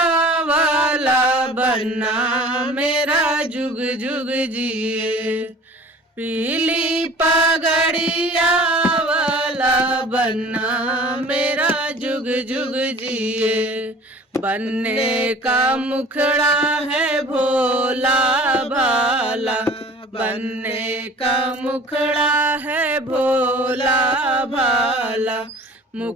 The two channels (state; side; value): normal; both; correlation 0.46